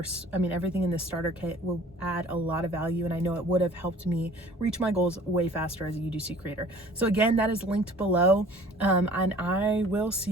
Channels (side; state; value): both; normal; correlation 0.50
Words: everything in this starter kit will add a lot of value, and I know it would have helped me reach my goals way faster as a UGC creator. So again, that is linked below, and I will see